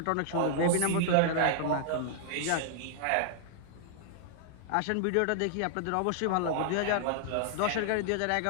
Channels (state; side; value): different; both; correlation -0.01